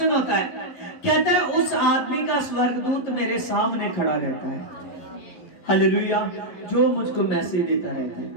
होता है, कहता है उस आदमी का स्वर्गदूत मेरे सामने खड़ा रहता है, हालेलुया, जो मुझको मैसेज देता रहता है,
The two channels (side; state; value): right; late; 11 ms